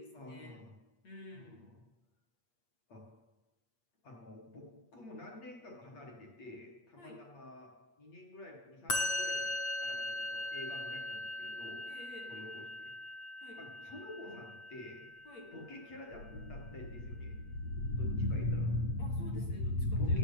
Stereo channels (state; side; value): late; right; 8.5 ms